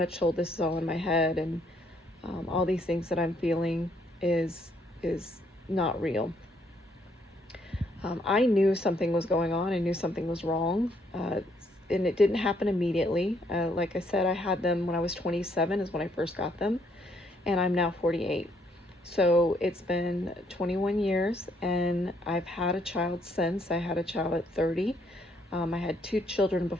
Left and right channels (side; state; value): both; normal; correlation 0.69